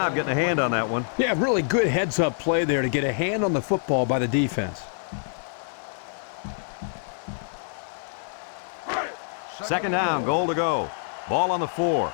getting a hand on that one. Yeah, really good heads-up play there to get a hand on the football by the defense. Second down, goal to go. Ball on the 4.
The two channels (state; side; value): silent; right; 56 dB below the other